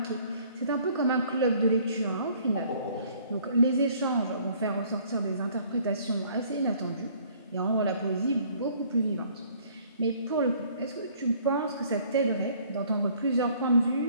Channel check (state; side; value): inverted; both; correlation -0.58